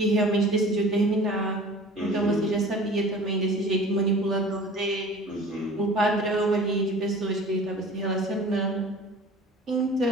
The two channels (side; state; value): both; normal; correlation 0.43